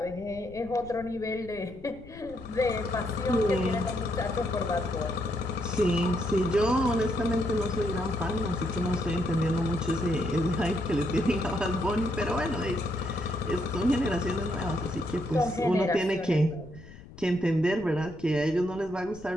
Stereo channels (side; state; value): left; noise; rumble, 18 dB below the sound